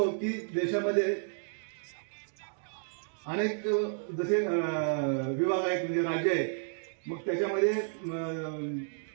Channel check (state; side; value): silent; left; digital silence